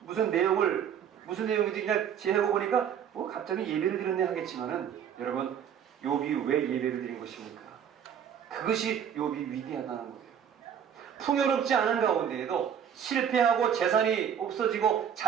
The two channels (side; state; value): left; quieter; 8.5 dB